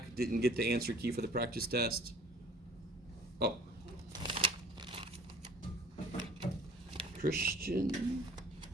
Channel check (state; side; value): normal; both; correlation 0.51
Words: didn't get the answer key for the practice test? Oh. Christian?